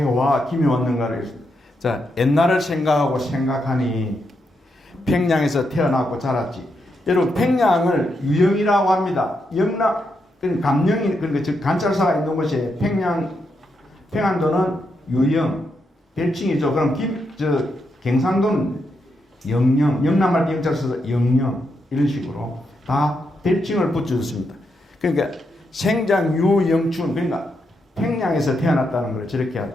와 김이 왔는가를 자 옛날을 생각하니 평양에서 태어났고 자랐지. 여러분 평양을 유영이라고 합니다. 영남 감영이 그러니까 즉 관찰사가 있는 곳이 평안도는 유영 별칭이죠. 그럼 경상도는 영영, 영남할 때 영자를 써서 영영 이런 식으로 다 별칭을 붙여줬습니다. 그러니까 생장유영춘, 그러니까 평양에서 태어났다는 걸 저렇게 하죠.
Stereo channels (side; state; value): both; normal; correlation 0.82